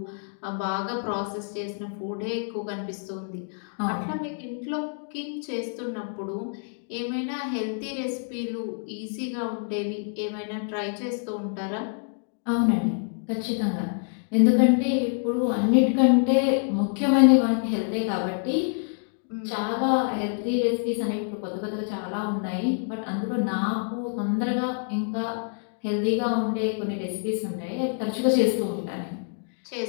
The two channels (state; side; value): silent; right; 60 dB below the other